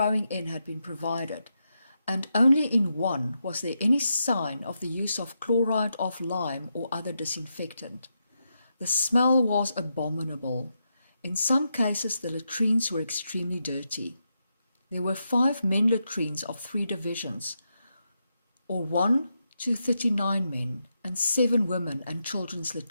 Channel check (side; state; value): both; inverted; correlation -0.84